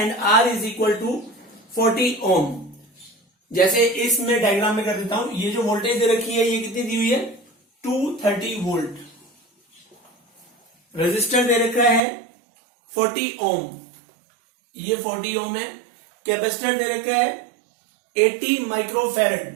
R is equal to 40 ohm। जैसे इसमें डायग्राम में कर देता हूं, ये जो वोल्टेज दे रखी है ये कितनी दी हुई है 230 वोल्ट। रेजिस्टर दे रखा है 40 ओम, ये 40 ओम है। कैपेसिटर दे रखा है 80 microfarad,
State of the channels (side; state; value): left; drops out; at 12.0 s